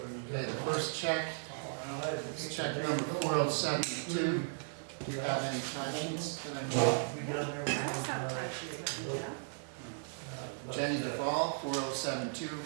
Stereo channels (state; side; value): silent; left; digital silence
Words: first check, it's check number 4072. Do you have any time sheets that I need? That's not right. Yeah. Jenny Duvall, 4072,